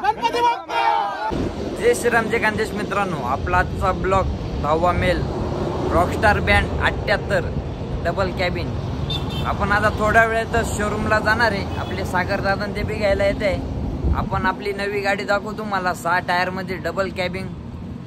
गणपती बाप्पा। जय श्रीराम जय खानदेश मित्रांनो, आपला आजचा ब्लॉग 10वा male rockstar band 78 double cabin. आपण आता थोड्या वेळातच शोरूमला जाणार आहे। आपले सागर दादा ते बी घ्यायला येते। आपण आपली नवी गाडी दाखवू तुम्हाला 6 टायर मध्ये डबल कॅबिन।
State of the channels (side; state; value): both; identical; correlation 1.00